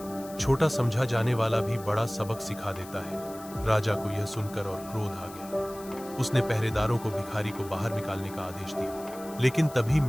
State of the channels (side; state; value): left; noise; hiss, 18 dB below the sound